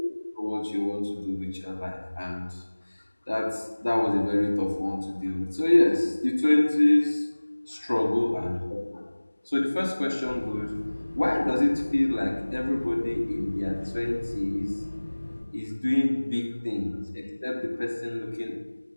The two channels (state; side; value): inverted; both; correlation -1.00